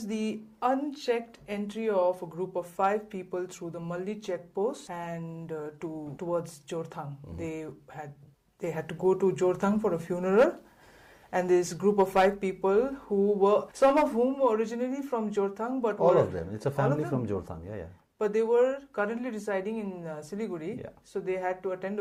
the unchecked entry of a group of 5 people through the Malli checkpost and towards Jorthang. They had to go to Jorthang for a funeral. And this group of 5 people some of whom were originally from Jorthang, but all of them. It's a family from Jorthang, But they were currently residing in Siliguri, Yeah. So they had to attend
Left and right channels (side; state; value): both; identical; correlation 1.00